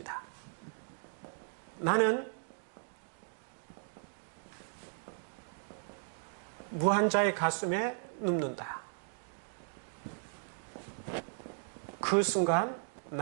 나는 무한자의 가슴에 눕는다. 그 순간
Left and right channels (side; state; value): left; silent; digital silence